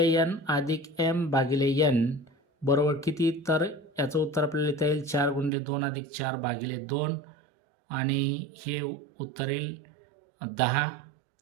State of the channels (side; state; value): left; drops out; at 5.5 s